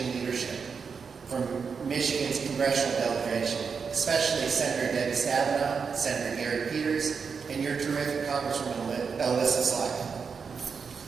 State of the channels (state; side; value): quieter; left; 5.7 dB